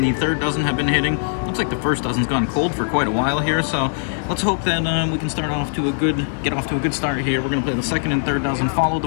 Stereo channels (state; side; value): silent; right; digital silence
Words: the third dozen have been hitting. Looks like the first dozen's gone cold for quite a while here, so let's hope that we can get off to a good start here. We're going to play the second and third dozen, follow the